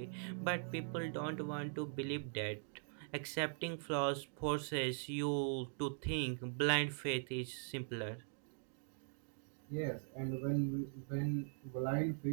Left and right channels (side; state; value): left; silent; digital silence